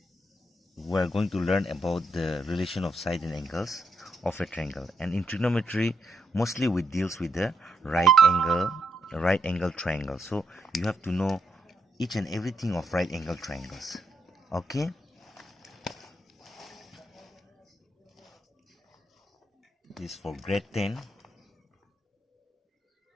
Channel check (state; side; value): normal; both; correlation 0.79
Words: we are going to learn about the relation of side and angles of a triangle. And in trigonometry, mostly we deals with the right angle triangle. So you have to know each and everything of right angle triangles. Okay, this is for grade 10.